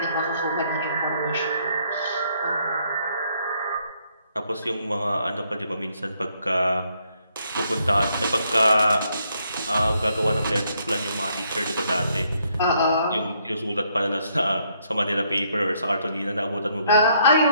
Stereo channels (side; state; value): both; inverted; correlation -0.71